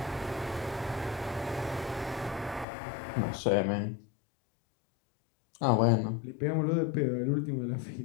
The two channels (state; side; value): drops out; right; at 2.7 s